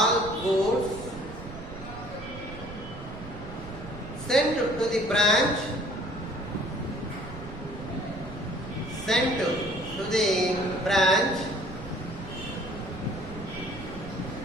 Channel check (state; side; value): noise; right; rumble, 12 dB below the sound